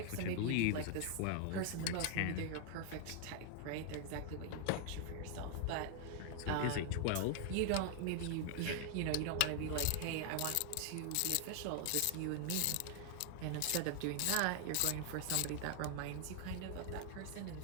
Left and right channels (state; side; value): different; both; correlation 0.00